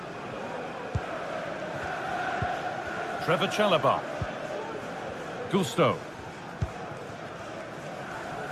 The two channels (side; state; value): both; identical; correlation 1.00